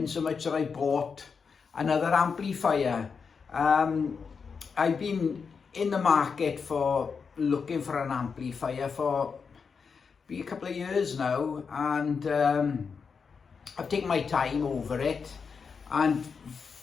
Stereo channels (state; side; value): quieter; right; 5.6 dB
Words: so much that I bought another amplifier. I've been in the market for looking for an amplifier for a couple of years now, and I've taken my time over it, and